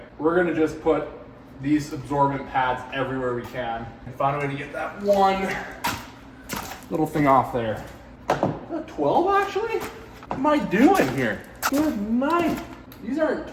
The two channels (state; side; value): identical; both; correlation 1.00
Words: we're gonna just put these absorbent pads everywhere we can and find a way to get that one little thing off there. Is that 12 actually? What am I doing here? Good night. These aren't